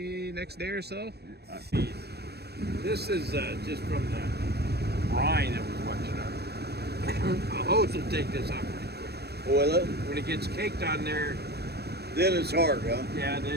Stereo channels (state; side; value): late; left; 0.47 ms